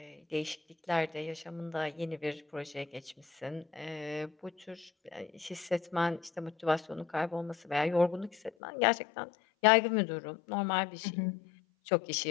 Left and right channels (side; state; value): right; drops out; at 8.5 s